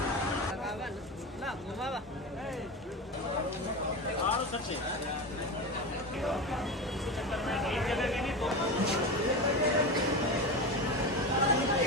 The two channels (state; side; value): normal; both; correlation 0.23